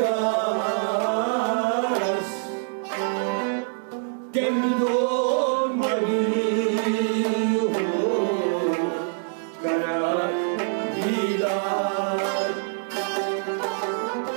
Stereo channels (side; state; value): left; silent; digital silence